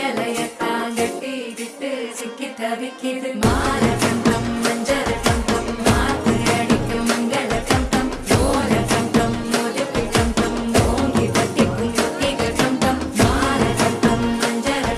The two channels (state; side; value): identical; both; correlation 1.00